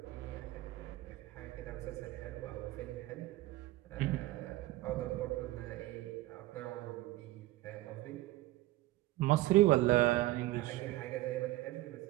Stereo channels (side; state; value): left; quieter; 17.2 dB